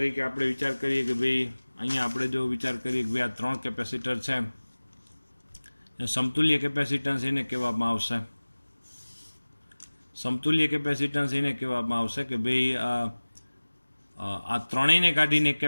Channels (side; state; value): both; inverted; correlation -1.00